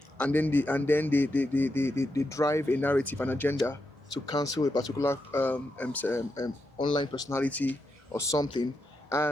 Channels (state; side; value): normal; both; correlation 0.85